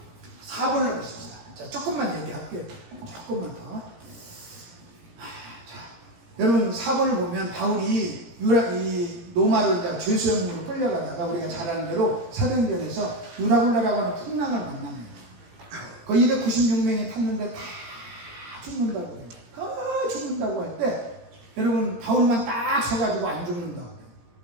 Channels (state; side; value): late; left; 17 ms